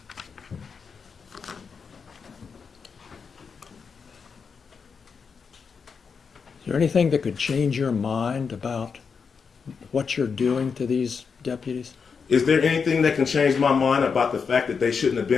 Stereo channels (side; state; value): right; quieter; 5.8 dB